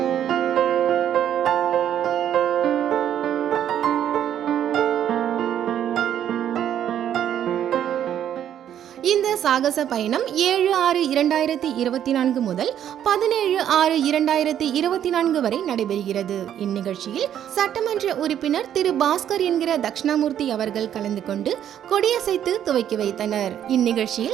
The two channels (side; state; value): left; quieter; 10.2 dB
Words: இந்த சாகச பயணம் 7/6/2024 முதல் 17/6/2024 வரை நடைபெறுகிறது. இந்நிகழ்ச்சியில் சட்டமன்ற உறுப்பினர் திரு பாஸ்கர் என்கிற தட்சிணாமூர்த்தி அவர்கள் கலந்து கொண்டு கொடியசைத்து துவக்கி வைத்தனர்.